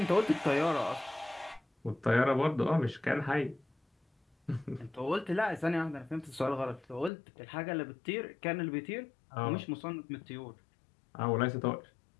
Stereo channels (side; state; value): right; drops out; at 7.1 s